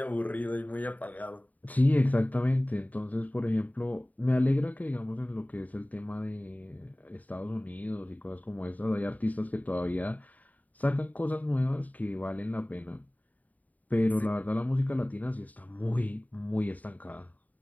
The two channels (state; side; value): late; right; 0.074 ms